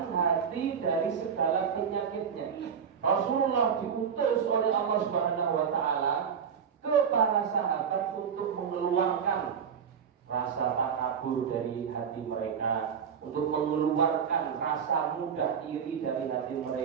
hati dari segala penyakitnya. Rasulullah diutus oleh Allah Subhanahu wa taala ke para sahabat untuk mengeluarkan rasa takabur dari hati mereka, untuk mengeluarkan rasa mudah iri dari hati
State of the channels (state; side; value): quieter; left; 7.2 dB